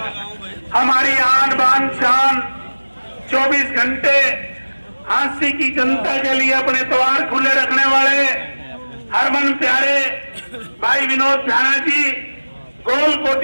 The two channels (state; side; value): inverted; both; correlation -1.00